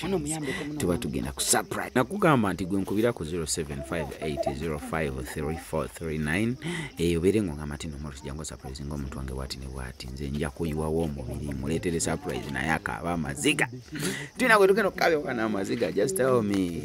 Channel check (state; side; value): identical; both; correlation 1.00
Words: Tuba tugenda ku surprise. Nakugamba nti gwe nkubira ku 0758053439. Oberengo ngamati no Morris jango surprise ngomuntu wange wati ne wati nze nja kuyiwawo omubiri muletere surprise naye akaba amaziga. Tina kwe tugenda kukabya kana amaziga, just tell